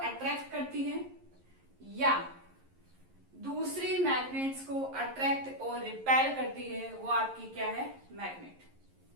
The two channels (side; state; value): left; late; 11 ms